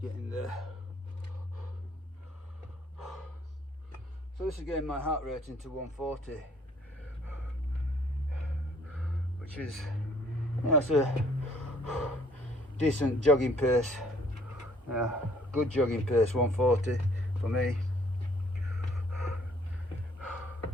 getting there. So this is getting my heart rate into 140, which is, you know, it's a decent jogging pace. Yeah, good jogging pace, 140 for me.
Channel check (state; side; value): normal; both; correlation 0.60